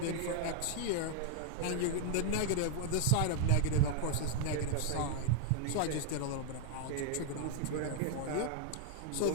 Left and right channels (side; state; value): both; different; correlation 0.00